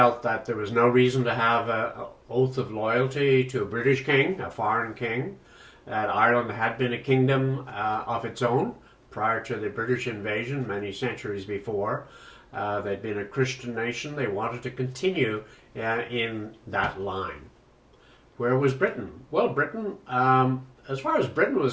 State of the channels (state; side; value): identical; both; correlation 1.00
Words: that there was no reason to have an oath of loyalty to a British king, a foreign king, that Ireland had been a kingdom of its own prior to the British invasion many centuries before. They'd been a Christian nation. They wanted to continue in that line. Where was Britain? Well, Britain, as far as Britain